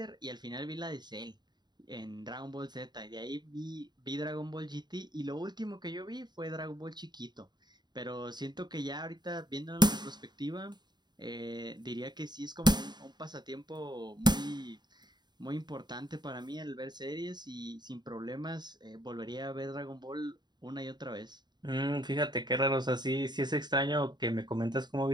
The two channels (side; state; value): left; late; 0.21 ms